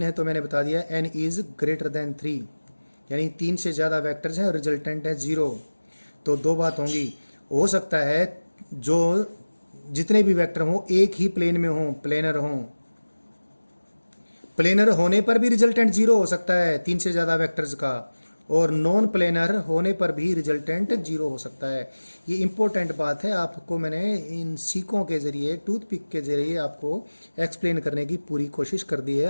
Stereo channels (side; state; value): both; inverted; correlation -1.00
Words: है तो मैंने बता दिया n इज ग्रेटर देन 3, यानी 3 से ज़्यादा वेक्टर्स हैं और रिजल्टेंट है 0। तो 2 बात होंगी, हो सकता है जो जितने भी वेक्टर हों एक ही प्लेन में हों, प्लेनर हों। प्लेनर होने पर भी रिजल्टेंट 0 हो सकता है 3 से ज़्यादा वेक्टर्स का, और नॉन प्लेनर होने पर भी रिजल्टेंट 0 हो सकता है। ये इंपॉर्टेंट बात है, आपको मैंने इन सीकों के ज़रिए, टूथपिक के ज़रिए आपको एक्सप्लेन करने की पूरी कोशिश कर दी है।